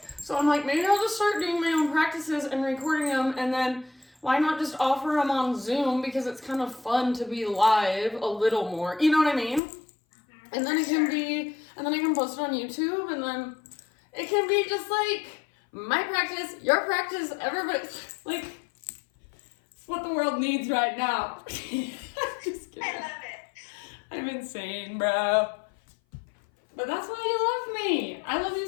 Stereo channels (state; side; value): drops out; right; at 9.6 s